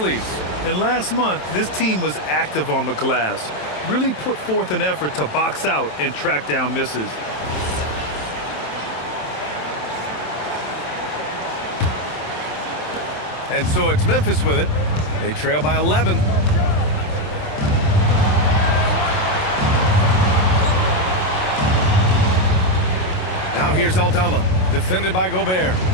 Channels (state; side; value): late; right; 27 ms